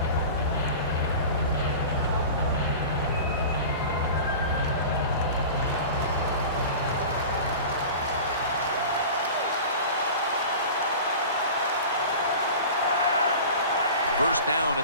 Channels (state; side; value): inverted; both; correlation -0.36